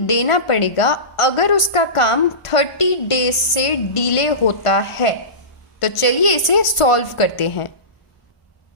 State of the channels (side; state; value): right; late; 1.4 ms